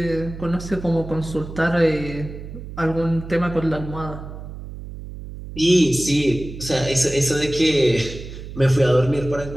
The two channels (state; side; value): noise; right; hum, 11 dB below the sound